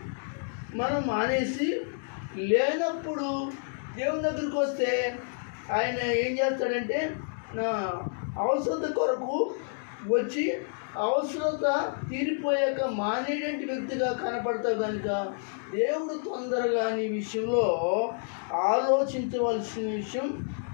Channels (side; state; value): right; silent; digital silence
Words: మనం మానేసి లేనప్పుడు దేవుని దగ్గరికి వస్తే ఆయన ఏం చేస్తాడంటే నా అవసరత కొరకు వచ్చి అవసరత తీరిపోయాక మానేటువంటి వ్యక్తిగా కనపడతావు కనుక దేవుడు తొందరగా నీ విషయంలో ఆలోచించవలసిన విషయం